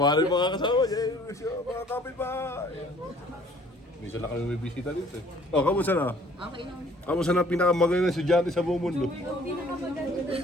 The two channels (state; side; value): normal; both; correlation 0.56